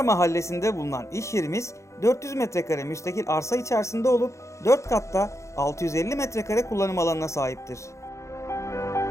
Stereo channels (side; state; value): right; late; 0.14 ms